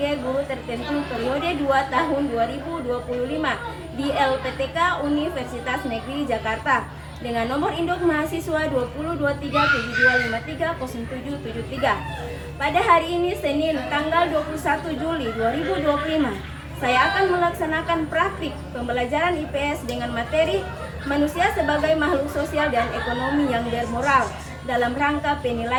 guru tertentu periode 2 tahun 2025 di LPTK Universitas Negeri Jakarta dengan nomor induk mahasiswa 202372530773. Pada hari ini Senin tanggal 21 Juli 2025, saya akan melaksanakan praktik pembelajaran IPS dengan materi manusia sebagai makhluk sosial dan ekonomi yang bermoral dalam rangka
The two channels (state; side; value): identical; both; correlation 1.00